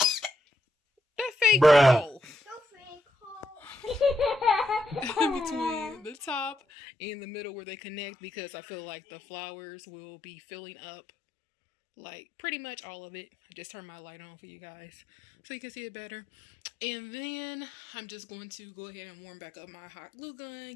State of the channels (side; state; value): right; drops out; at 6.6 s